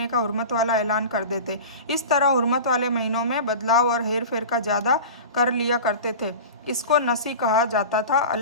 का हुर्मत वाला ऐलान कर देते। इस तरह हुर्मत वाले महीनों में बदलाव और हेर फेर का ज़्यादा कर लिया करते थे। इसको नसी कहा जाता था।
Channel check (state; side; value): inverted; both; correlation -0.33